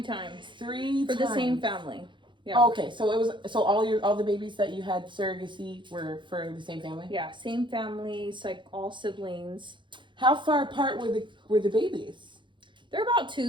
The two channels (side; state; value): left; late; 0.23 ms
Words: times. 3 for times. the same family. Yeah. Oh, okay, so it was all the babies that you had surrogacy were for the same family. Yeah, same families, like all siblings. How far apart were the babies? They're about